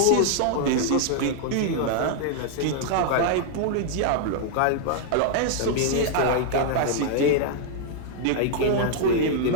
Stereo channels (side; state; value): both; different; correlation -0.01